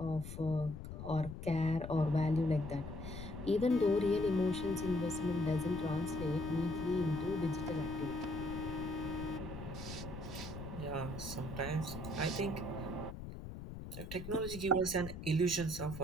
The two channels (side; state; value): left; noise; rumble, 9 dB below the sound